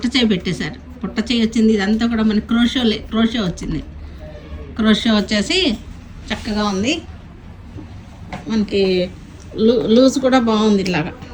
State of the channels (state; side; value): identical; both; correlation 1.00